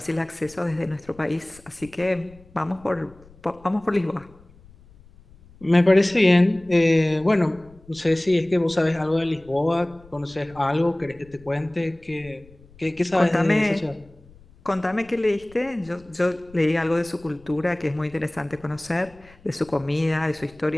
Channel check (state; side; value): noise; left; rumble, 25 dB below the sound